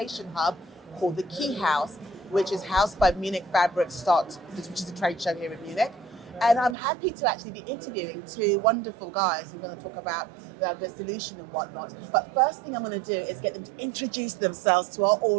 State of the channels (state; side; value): drops out; left; at 6.8 s